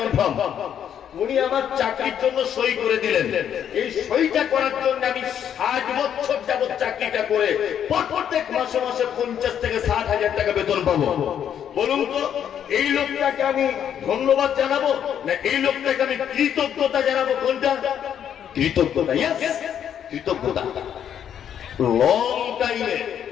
উনি আমার চাকরির জন্য সই করে দিলেন। এই সইটা করার জন্য আমি 60 বছর যাবত চাকরিটা করে প্রত্যেক মাসে মাসে 50 থেকে 60,000 টাকা বেতন পাবো। বলুন তো এই লোকটাকে আমি ধন্যবাদ জানাবো না এই লোকটাকে আমি কৃতজ্ঞতা জানাবো? কোনটা? কৃতজ্ঞতা। কৃতজ্ঞতা। লং টাইমে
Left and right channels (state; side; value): quieter; right; 9.2 dB